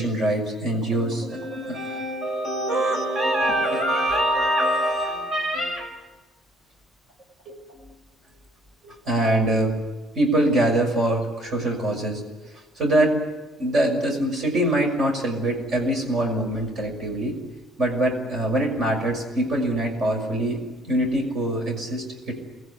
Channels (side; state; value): both; normal; correlation 0.60